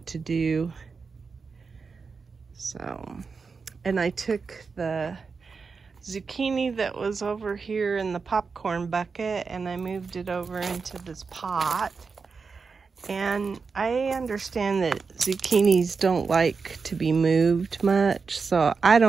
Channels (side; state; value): left; quieter; 5.0 dB